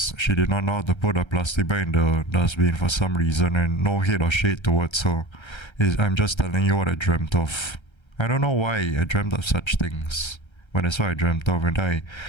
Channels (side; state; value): right; late; 1.3 ms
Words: she did not know how to put a plastic bag in the dustbin for some reason, and no hate or shade towards her. I'm just telling you what I dreamt of. I don't know why I dreamt of such things. But that's what I dreamt of, and I